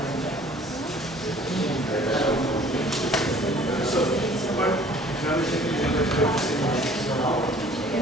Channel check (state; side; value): normal; both; correlation 0.53